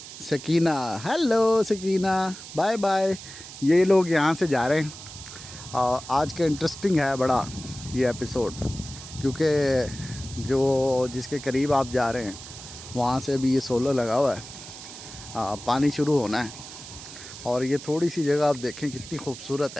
Sakina. Hello Sakina, bye bye. ये लोग यहाँ से जा रहे हैं। आज का इंटरेस्टिंग है बड़ा ये एपिसोड, क्योंकि जो जिसके करीब आप जा रहे हैं वहाँ से भी ये सोलर लगा हुआ है। पानी शुरू होना है और ये थोड़ी सी जगह आप देखें कितनी खूबसूरत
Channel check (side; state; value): right; noise; hiss, 14 dB below the sound